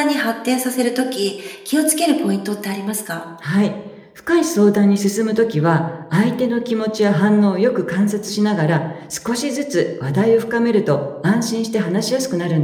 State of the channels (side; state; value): both; identical; correlation 1.00